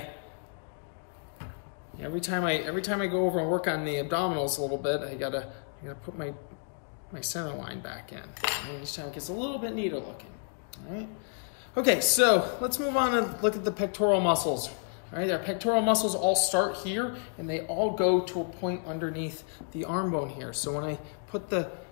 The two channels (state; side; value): silent; right; 57 dB below the other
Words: every time I go over and work on the abdominals a little bit, I gotta put my center line back in. And each time it gets a little bit neater looking. All right. Okay, so let's move on and look at the pectoral muscles. All right, our pectoral muscles all start here, and they all go to a point underneath the arm bone here. So when I put the